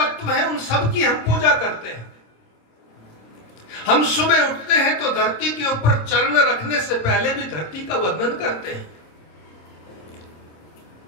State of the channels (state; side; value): late; right; 26 ms